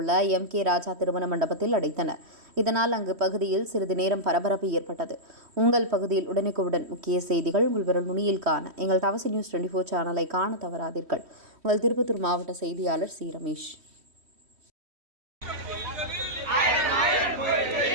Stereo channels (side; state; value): left; late; 3.1 ms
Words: உள்ள MK ராஜா திருமண மண்டபத்தில் அடைத்தனர். இதனால் அங்கு பகுதியில் சிறிது நேரம் பரபரப்பு ஏற்பட்டது. உங்கள் பகுதியில் உடனுக்குடன் முக்கிய செய்திகள் உங்கள் விரல் நுனியில் காண எங்கள் தவசி நியூஸ் 24 சேனலை காண தவறாதீர்கள். உங்கள் திருப்பத்தூர் மாவட்ட செய்தியாளர் சி. ரமேஷ்.